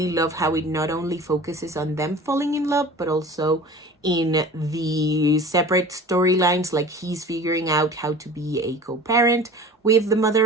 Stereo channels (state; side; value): normal; both; correlation 0.41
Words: love how it not only focuses on them falling in love, but also in the separate storylines, like he's figuring out how to be a co-parent with the